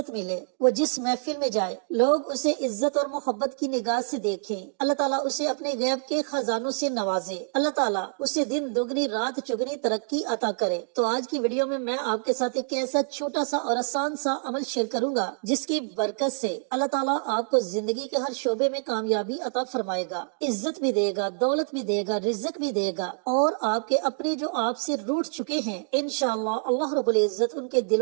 ملے، وہ جس محفل میں جائے لوگ اسے عزت اور محبت کی نگاہ سے دیکھیں، اللہ تعالیٰ اسے اپنے غیب کے خزانوں سے نوازے، اللہ تعالیٰ اسے دن دگنی رات چگنی ترقی عطا کرے۔ تو آج کی ویڈیو میں آپ کے ساتھ ایک ایسا چھوٹا سا اور آسان سا عمل شیئر کروں گا جس کی برکت سے اللہ تعالیٰ آپ کو زندگی کے ہر شعبے میں کامیابی عطا فرمائے گا، عزت بھی دے گا، دولت بھی دے گا، رزق بھی دے گا، اور آپ کے اپنے جو آپ سے روٹھ چکے ہیں انشاءاللہ اللہ رب العزت ان کے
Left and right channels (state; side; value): silent; left; digital silence